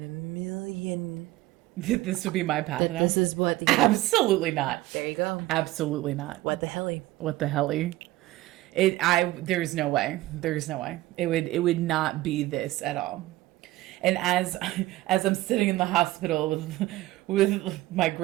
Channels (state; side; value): quieter; left; 17.2 dB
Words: a million that this would be my path now? This is what Absolutely not. There you go. Absolutely not. What the Helly? What the Helly? There's no way. There's no way. It would not be this at all. And as I'm sitting in the hospital with my